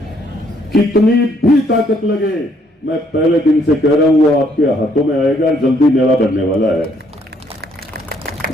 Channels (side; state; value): both; normal; correlation 0.68